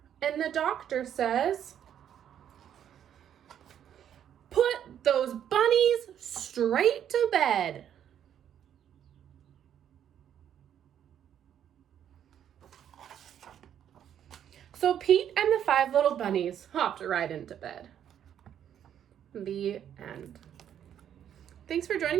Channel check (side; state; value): left; quieter; 9.7 dB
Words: and the doctor says, "Put those bunnies straight to bed." So Pete and the 5 little bunnies hopped right into bed. The end. Thanks for